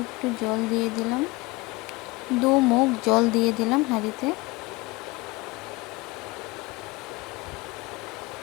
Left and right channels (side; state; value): right; quieter; 22.8 dB